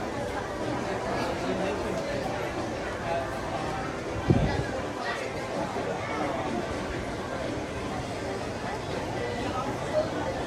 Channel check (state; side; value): identical; both; correlation 1.00